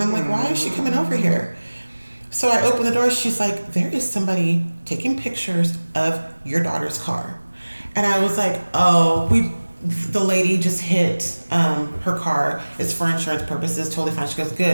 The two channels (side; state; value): both; inverted; correlation -1.00